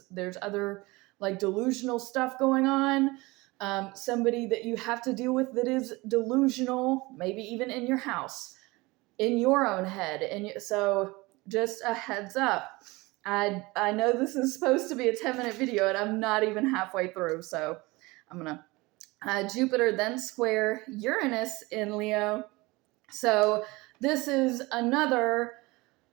there's other like delusional stuff going on, somebody that you have to deal with that is delusional, maybe even in your house, in your own head. And so just a heads up. I know this is supposed to be a 10-minute video, and I'm not even halfway through, so I'm going to Jupiter then square Uranus in Leo. So this is another,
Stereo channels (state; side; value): quieter; left; 22.8 dB